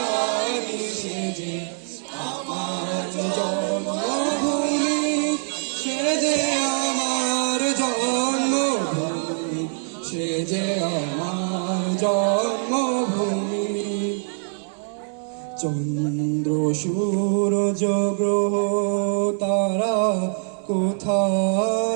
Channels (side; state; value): left; silent; digital silence